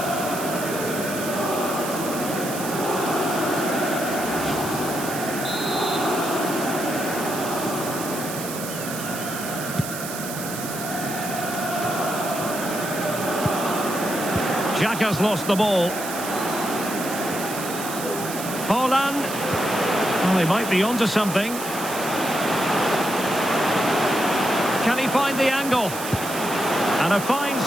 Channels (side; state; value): right; noise; hiss, 8 dB below the sound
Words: Xhaka's lost the ball. Haaland. Well, they might be onto something. Can he find the angle? And a fine